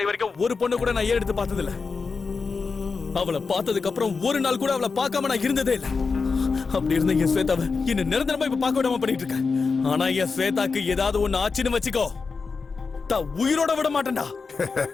வரைக்கும் ஒரு பொண்ணு கூட நான் எடுத்து பார்த்தது இல்ல. அவளை பார்த்ததுக்கு அப்புறம் ஒரு நாள் கூட அவளை பார்க்காம நான் இருந்ததே இல்ல. அப்படி இருந்த என் ஸ்வேதாவை என்ன நிரந்தரமா இப்ப பார்க்க விடாம பண்ணிட்டு இருக்கேன். ஆனா என் ஸ்வேதாக்கு ஏதாவது ஒண்ணு ஆச்சுன்னு வச்சுக்கோ, உயிரோட விட மாட்டேன்டா.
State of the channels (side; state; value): right; quieter; 4.7 dB